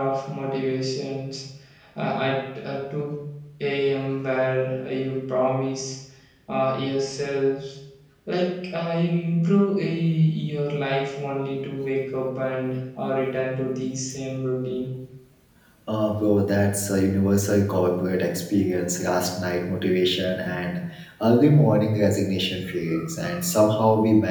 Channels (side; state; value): both; identical; correlation 1.00